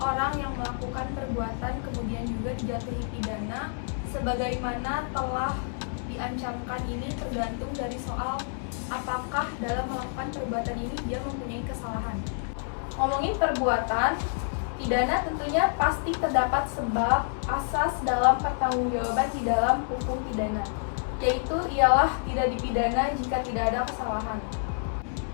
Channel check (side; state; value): right; silent; 59 dB below the other